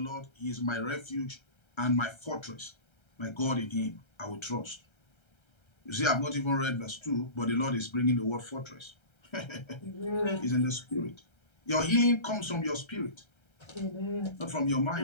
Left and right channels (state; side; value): late; right; 1.3 ms